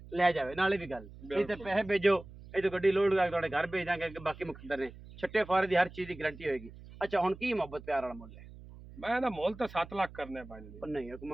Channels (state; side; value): noise; right; hum, 17 dB below the sound